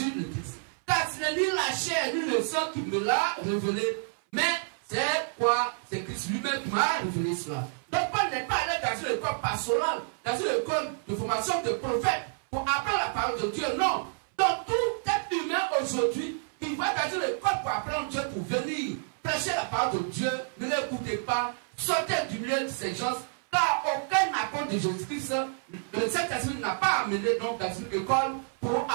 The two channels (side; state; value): left; silent; 59 dB below the other